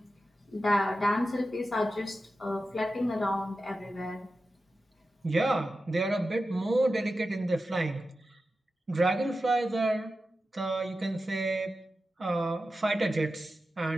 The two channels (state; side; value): normal; both; correlation 0.92